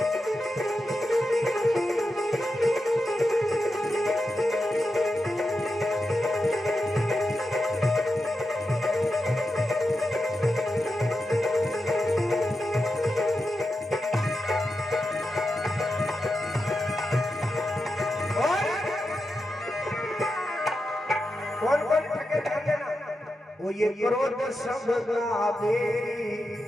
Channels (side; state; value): both; normal; correlation 0.88